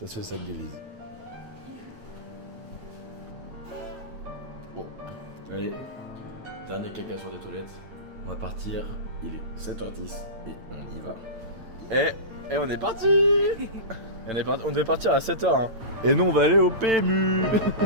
c'est le sac d'Élise. Bon, allez, dernier caca sur des toilettes. On va partir, il est 7h10 et on y va. Et on est parti. On devait partir à 7h. Hein. Et nous on va aller au PMU.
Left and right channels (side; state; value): left; late; 9.0 ms